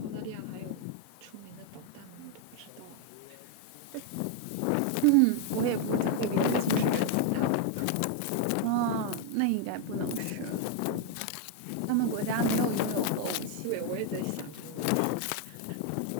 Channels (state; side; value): different; both; correlation 0.01